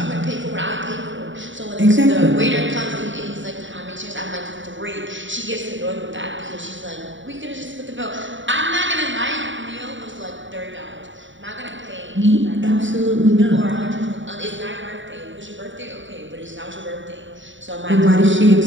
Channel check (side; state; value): left; late; 0.55 ms